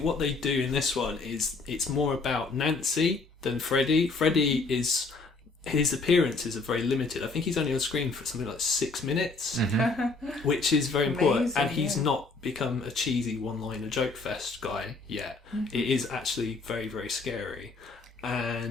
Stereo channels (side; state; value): right; quieter; 3.8 dB